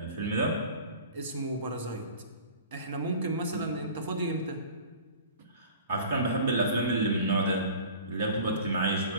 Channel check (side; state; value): both; inverted; correlation -0.42